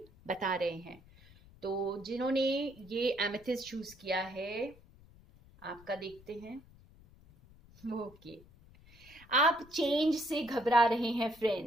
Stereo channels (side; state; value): left; noise; rumble, 24 dB below the sound